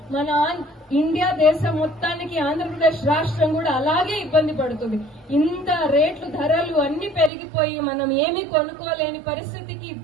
మన ఇండియా దేశం మొత్తానికి ఆంధ్రప్రదేశ్ రాష్ట్రం కూడా అలాగే ఇబ్బంది పడుతుంది. ఇంత రేట్లు, ధరలు అన్ని పెరిగిపోయి మనం ఏమీ కొనుక్కోలేని పరిస్థితికి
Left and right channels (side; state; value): left; drops out; at 7.3 s